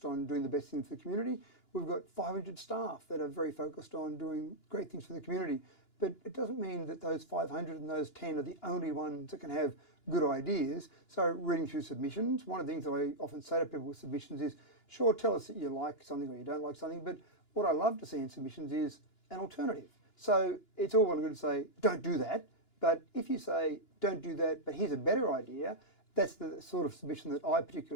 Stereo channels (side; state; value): right; late; 2.9 ms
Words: on doing the best things for the community. We've got 500 staff that are very focused on doing great things for the community. But it doesn't mean that those 500 and those 10 are the only ones that can have good ideas. So reading through submissions, one of the things that I often say to people with submissions is, sure, tell us that you like something or you don't like something, but what I love to see in submissions is an alternative. So it's all well and good to say, don't do that. But if you say, don't do that, but here's a better idea, that's the sort of submission that I